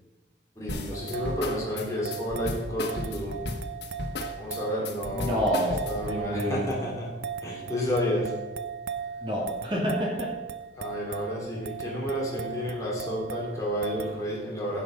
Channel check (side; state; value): both; normal; correlation 0.37